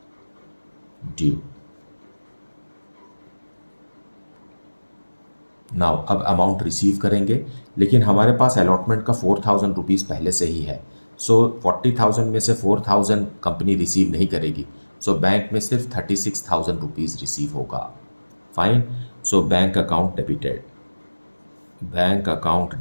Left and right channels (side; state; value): both; inverted; correlation -1.00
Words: due. Now अब अमाउंट रिसीव करेंगे, लेकिन हमारे पास अलॉटमेंट का 4000 रुपीज़ पहले से ही है। सो 40,000 में से 4000 कंपनी रिसीव नहीं करेगी, सो बैंक में सिर्फ 36,000 रुपीज़ रिसीव होगा, fine. So bank account debited, bank account